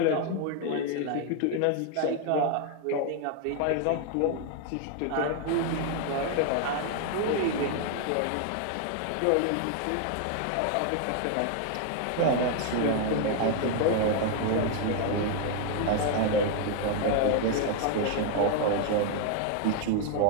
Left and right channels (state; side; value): different; both; correlation 0.01